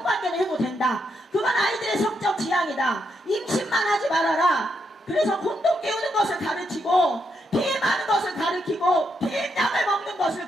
해도 된다. 그건 아이들의 성적 지향이다. 임신만 하지 말아라. 그래서 콘돔 끼우는 것을 가르치고 피임하는 것을 가르치고 피임약을 먹는 것을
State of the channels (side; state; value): both; normal; correlation 0.80